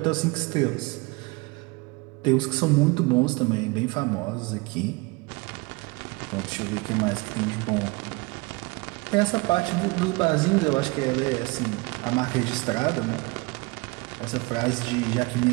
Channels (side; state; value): left; quieter; 25.7 dB